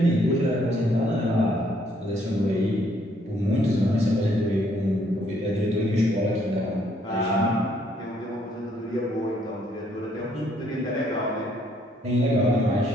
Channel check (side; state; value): both; normal; correlation 0.67